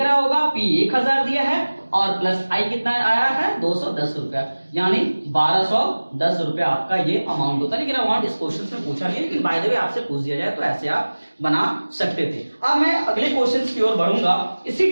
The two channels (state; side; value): inverted; both; correlation -1.00